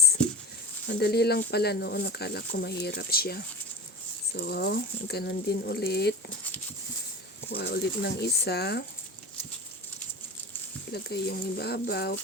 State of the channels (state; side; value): normal; both; correlation 0.36